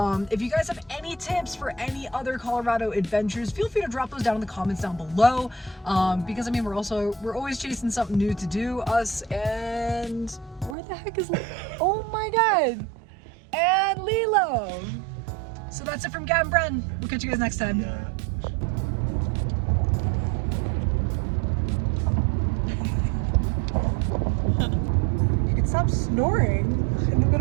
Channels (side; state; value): left; drops out; at 10.8 s